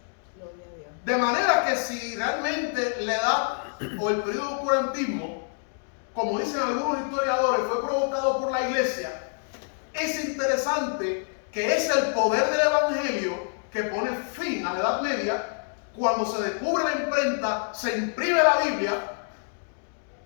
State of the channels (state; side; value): silent; right; 57 dB below the other